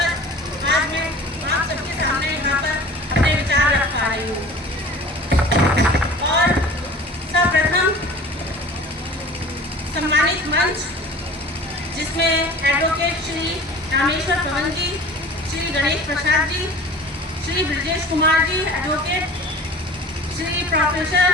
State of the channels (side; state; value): both; normal; correlation 0.42